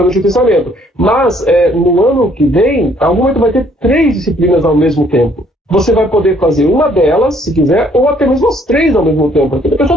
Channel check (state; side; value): normal; both; correlation 0.64